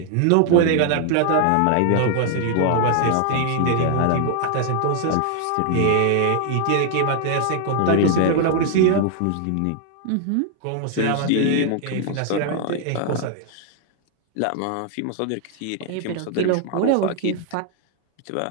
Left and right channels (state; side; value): different; both; correlation 0.00